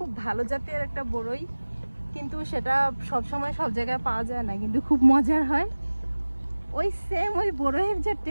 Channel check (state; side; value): inverted; both; correlation -1.00